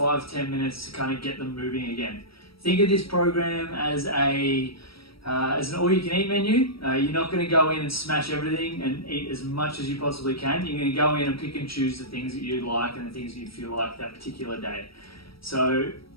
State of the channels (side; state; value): right; late; 0.75 ms